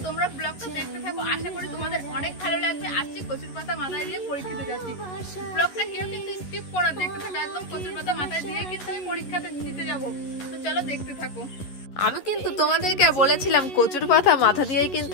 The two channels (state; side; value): late; right; 11 ms